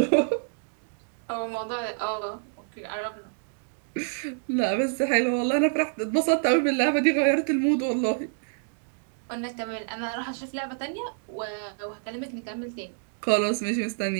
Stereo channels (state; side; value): silent; left; digital silence